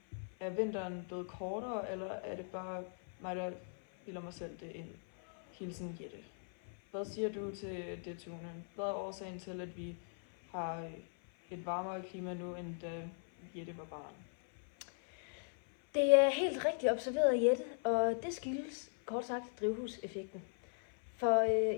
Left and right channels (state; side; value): silent; right; 52 dB below the other